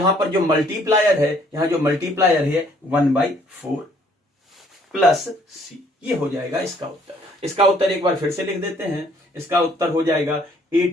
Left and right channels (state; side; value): normal; both; correlation 0.62